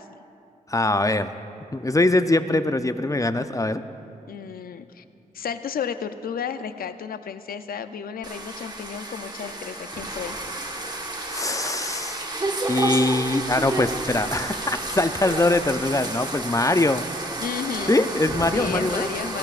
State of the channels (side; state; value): both; normal; correlation 0.63